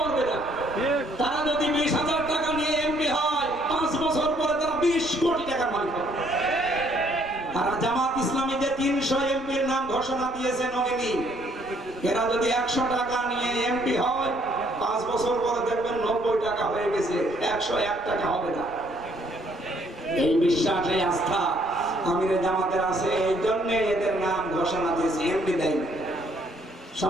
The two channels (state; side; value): normal; both; correlation 0.66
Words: না। তারা যদি 20,000 টাকা নিয়ে এমপি হয় 5 বছর পরে তারা 20 কোটি টাকার মালিক হবে। তারা জামাত ইসলামী যে 300 এমপির নাম ঘোষণা দিয়েছে নমিনি, এরা যদি 100 টাকা নিয়ে এমপি হয় 5 বছর পরে দেখবেন 90 টাকা হয়ে গেছে, 101 টাকা হবে না। এই বিশ্বাস এই আস্থা আমিরে জামাতের আছে, এই জন্য এদের নাম ঘোষণা দিয়েছে, এমপি দেয়নি।